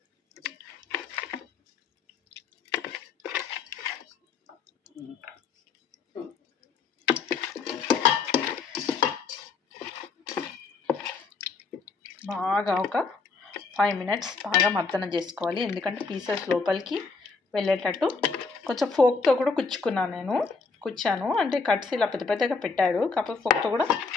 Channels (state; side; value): quieter; right; 4.6 dB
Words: బాగా ఒక 5 మినిట్స్ బాగా మర్దన చేసుకోవాలి. ఎందుకంటే పీసెస్ లోపలికి వెళ్ళేటట్టు. కొంచెం ఫోక్తో కూడా కుచ్చాను. అంటే కట్స్ ఇలా పెద్ద పెద్దగా పెట్టాడు, కాకపోతే ఫోక్తో కూడా